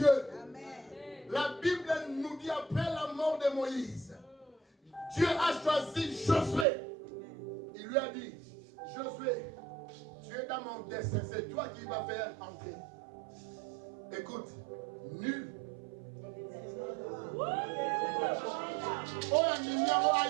La Bible nous dit après la mort de Moïse, Dieu a choisi Josué. Il lui a dit, Josué, tu es dans mon dessein, c'est toi qui vas faire entrer. Écoute, nul.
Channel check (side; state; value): left; drops out; at 6.7 s